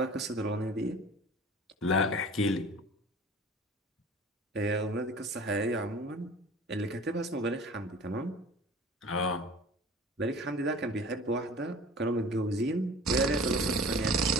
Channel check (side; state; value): both; normal; correlation 0.43